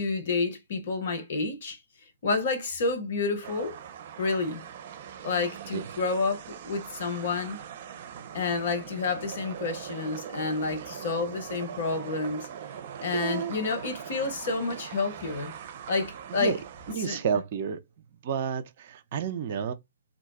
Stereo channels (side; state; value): both; inverted; correlation -0.45